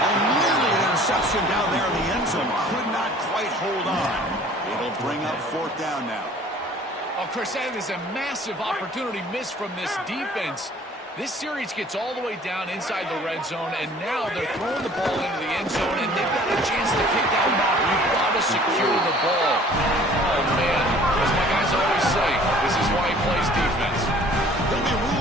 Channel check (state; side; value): normal; both; correlation 0.52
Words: Nearly an interception down there in the end zone. Could not quite hold on. It'll bring up 4th down now. Oh, Chris, that is a massive opportunity missed from this defense. This series gets all the way down inside the red zone, and now they're throwing the ball into the end zone, and they've got a chance to pick that one off. You've got to secure the ball. Oh, man. As my guys always say, this is why he plays defense. He'll be